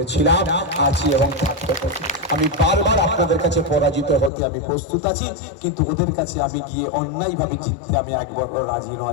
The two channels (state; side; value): drops out; right; at 4.3 s